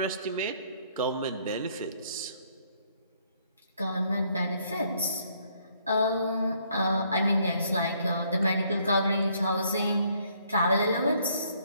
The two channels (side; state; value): both; inverted; correlation -0.67